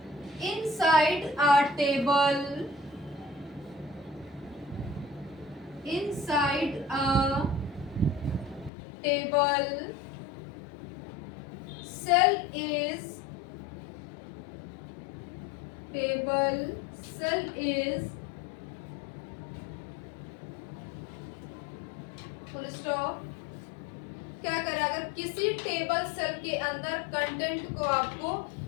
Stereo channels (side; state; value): right; drops out; at 8.7 s